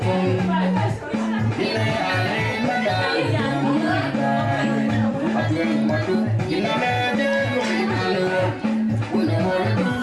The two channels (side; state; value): both; identical; correlation 1.00